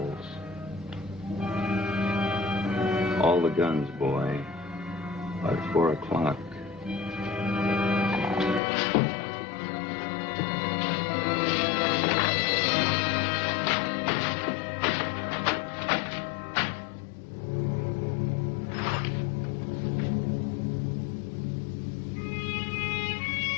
All the guns, boy, by 4 o'clock.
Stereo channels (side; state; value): right; drops out; at 8.6 s